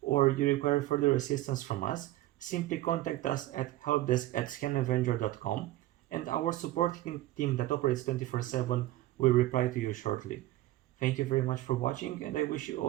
you require further assistance from us, simply contact us at helpdesk@scanavenger.com and our support team that operates 24/7 will reply to you shortly. Thank you very much for watching and I wish you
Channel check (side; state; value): left; quieter; 16.1 dB